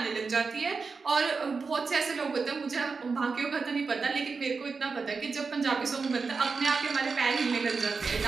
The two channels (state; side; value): quieter; left; 4.7 dB